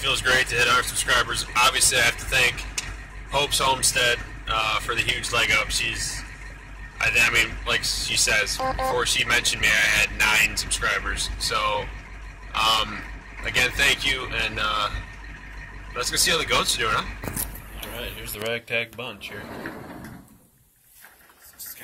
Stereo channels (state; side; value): identical; both; correlation 1.00